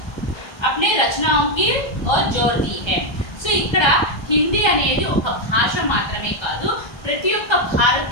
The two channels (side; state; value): right; late; 1.3 ms